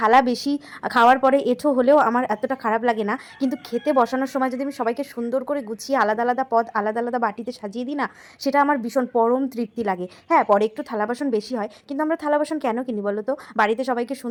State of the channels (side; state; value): both; identical; correlation 1.00